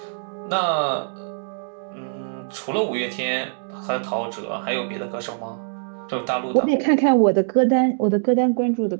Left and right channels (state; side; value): silent; left; digital silence